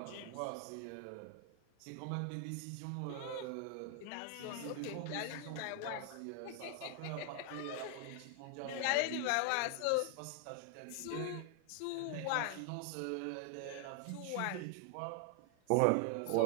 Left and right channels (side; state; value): both; different; correlation 0.00